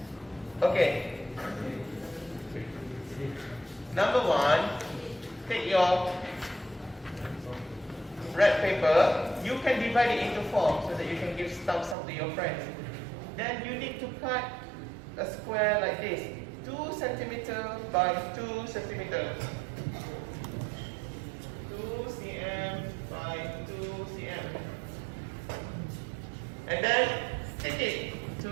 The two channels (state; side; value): drops out; left; at 12.0 s